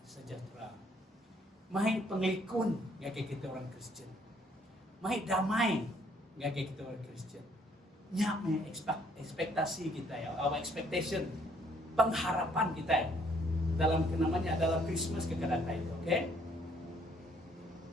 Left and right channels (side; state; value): both; normal; correlation 0.65